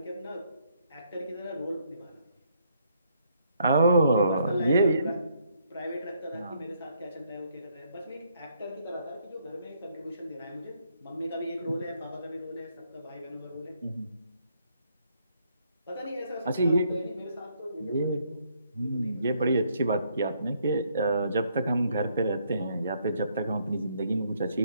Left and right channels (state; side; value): inverted; both; correlation -0.71